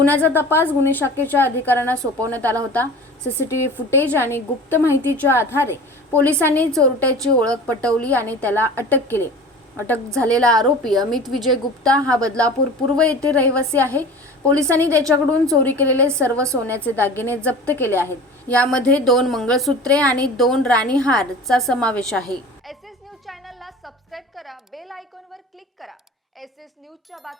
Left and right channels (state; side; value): normal; both; correlation 0.38